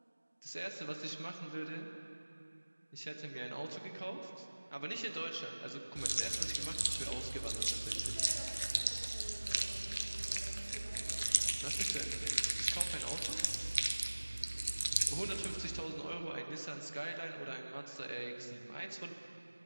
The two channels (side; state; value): both; inverted; correlation -1.00